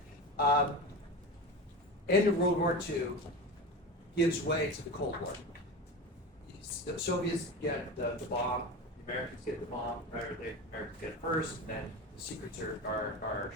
End of World War II gives way to the Cold War. The Soviets get the bomb, the Americans get the bomb, right? Or the Americans get it first, and then the secrets are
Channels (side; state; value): both; normal; correlation 0.27